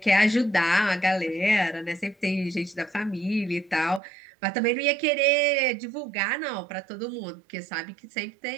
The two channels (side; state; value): left; drops out; at 4.0 s